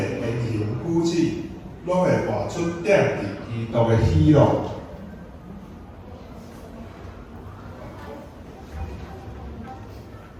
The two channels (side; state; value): both; identical; correlation 1.00